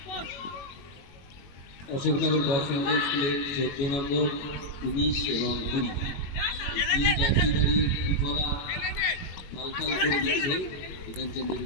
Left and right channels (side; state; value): right; late; 21 ms